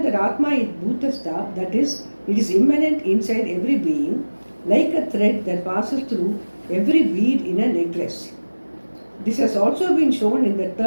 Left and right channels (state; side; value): inverted; both; correlation -1.00